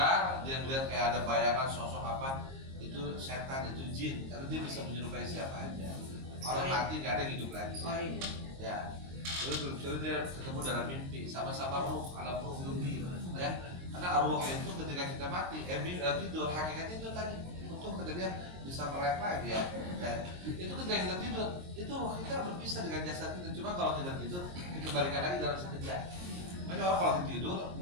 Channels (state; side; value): late; left; 22 ms